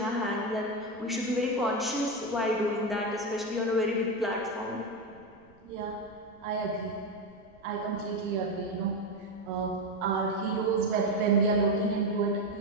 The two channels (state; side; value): noise; right; rumble, 29 dB below the sound